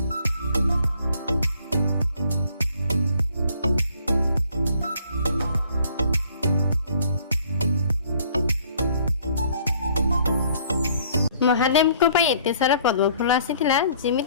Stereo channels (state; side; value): inverted; both; correlation -0.59